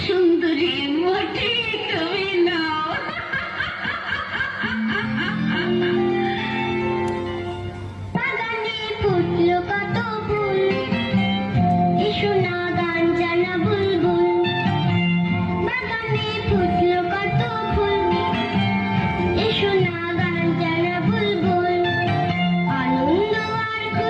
সুন্দরী মোটে তুমি নাও। বাগানে ফুটলো কত ফুল, এসো না গান জানা বুলবুল। বাগানে ফুটলো কত ফুল, এসো না গান জানা বুলবুল। আনন্দ আর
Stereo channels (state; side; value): identical; both; correlation 1.00